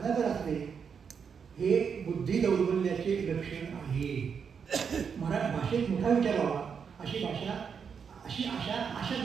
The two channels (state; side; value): quieter; left; 6.6 dB